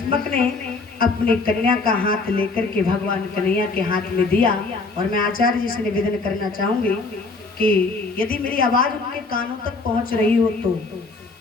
ने अपनी कन्या का हाथ लेकर के भगवान कन्हैया के हाथ में दिया। और मैं आचार्य जी से निवेदन करना चाहूंगी कि यदि मेरी आवाज उनके कानों तक पहुंच रही हो तो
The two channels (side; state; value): right; quieter; 3.8 dB